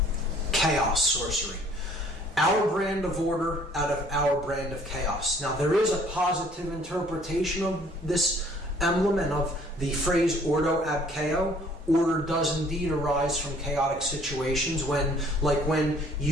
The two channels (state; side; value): normal; both; correlation 0.57